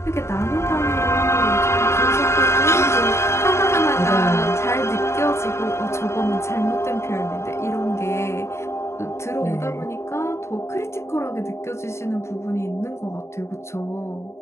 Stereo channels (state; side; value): late; right; 0.13 ms